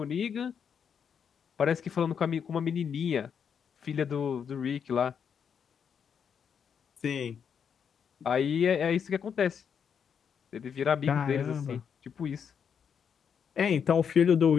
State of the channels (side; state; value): right; quieter; 7.3 dB